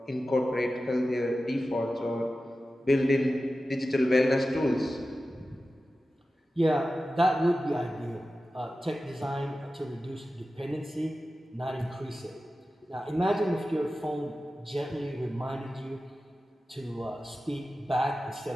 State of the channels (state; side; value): normal; both; correlation 0.94